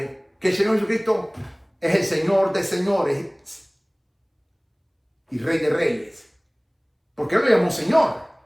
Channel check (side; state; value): both; identical; correlation 1.00